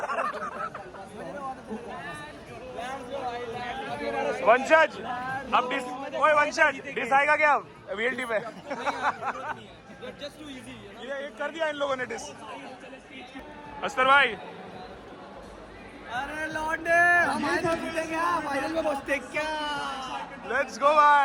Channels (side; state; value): both; identical; correlation 1.00